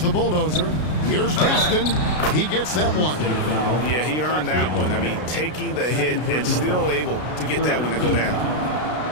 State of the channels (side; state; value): right; late; 33 ms